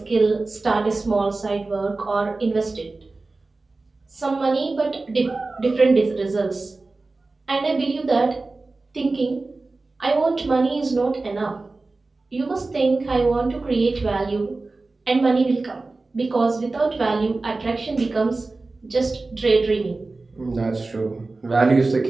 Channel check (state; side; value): quieter; left; 3.4 dB